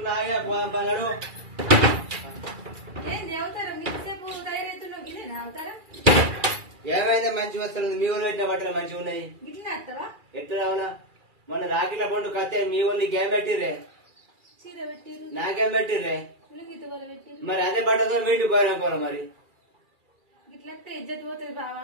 ఏంది అవుతారా మీసేపు తయారైతున్నావు గిట్లనే అవుతారా ఏమైందా మంచి వస్తుంది మీ ఊళ్ళు పెట్టిన బట్టలు మంచిగా ఉన్నాయి గిట్లనే వస్తావా ఎట్లా రావునా మొన్న రాకిల పండు కత్తే మీ ఊళ్ళు నీకేం పెట్టిర్రే చీర పెట్టిరు నాకేం పెట్టిర్రే లుంగితో వాళ్ళు పెట్టిరు మరి అదే బట్టతో మీటికి పోయినా మరి గిట్లస్తే ఇజ్జత్ పోతుంది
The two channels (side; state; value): left; late; 2.4 ms